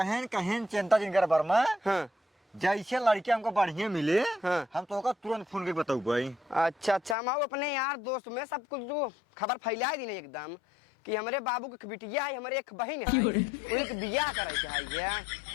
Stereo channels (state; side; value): drops out; right; at 7.2 s